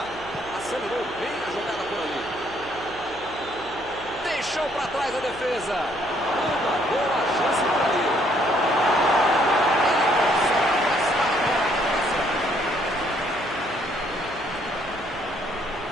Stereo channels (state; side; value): noise; right; hum, 20 dB below the sound